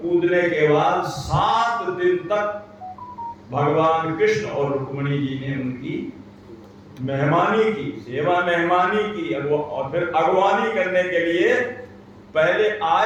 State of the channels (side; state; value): both; identical; correlation 1.00